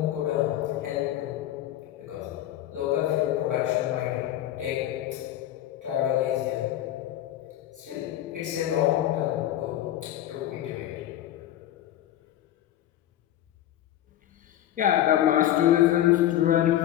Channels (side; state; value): right; quieter; 12.6 dB